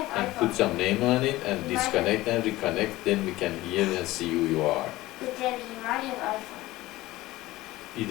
and iPhone. put some name on it, and Right. disconnect and reconnect, then we can hear and see who you are. But then he might have iPhone.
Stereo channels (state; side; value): quieter; right; 17.9 dB